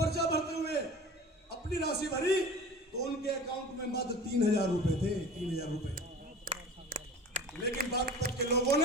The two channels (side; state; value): both; normal; correlation 0.38